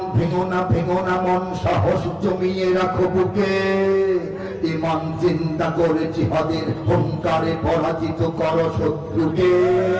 ভেঙো না মন, সাহস জমিয়ে রাখো বুকে। ইমান চিন্তা করে জিহাদের হুঙ্কারে পরাজিত করো শত্রুকে।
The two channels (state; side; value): identical; both; correlation 1.00